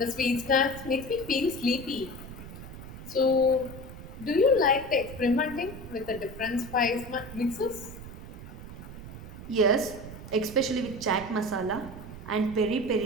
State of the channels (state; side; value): noise; right; rumble, 13 dB below the sound